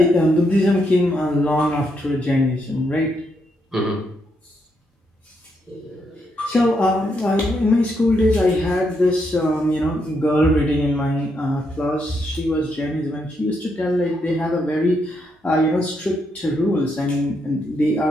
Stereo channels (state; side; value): normal; both; correlation 0.79